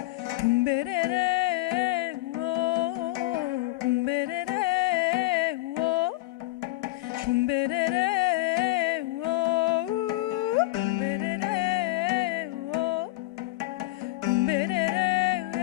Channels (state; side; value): quieter; right; 18.6 dB